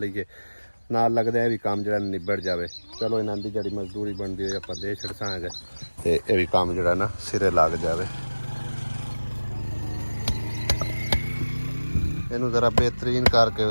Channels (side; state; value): both; inverted; correlation -1.00